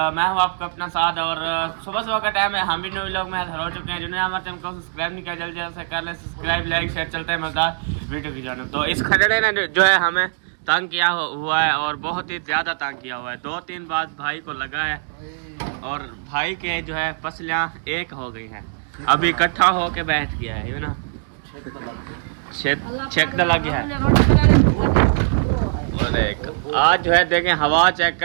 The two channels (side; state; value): left; silent; digital silence